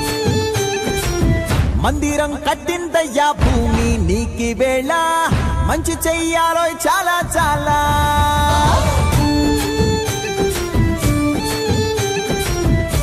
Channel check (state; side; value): identical; both; correlation 1.00